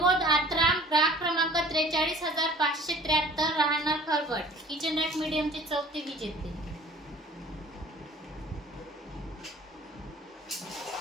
आत्राम, ग्राहक क्रमांक 43,573, राहणार खरवट, किचन रॅक मीडियमचे चौथे विजेते.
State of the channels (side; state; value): both; normal; correlation 0.48